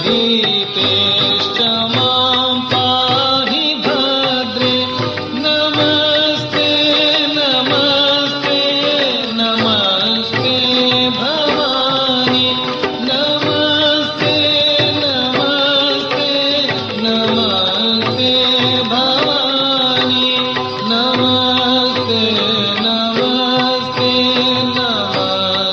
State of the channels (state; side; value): identical; both; correlation 1.00